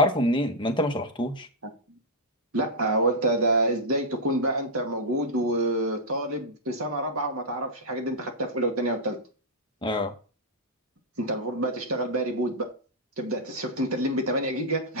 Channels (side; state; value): both; normal; correlation -0.07